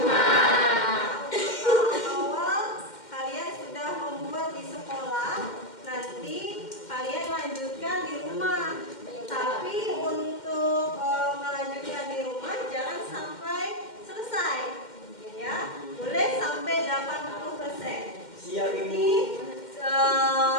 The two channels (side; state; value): right; late; 2.1 ms